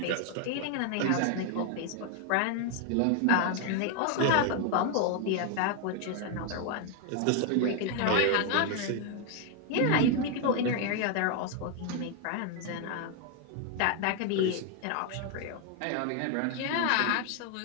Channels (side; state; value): both; different; correlation 0.01